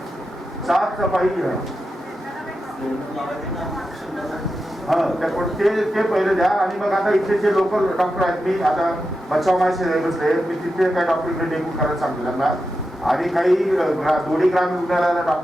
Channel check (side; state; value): both; normal; correlation 0.89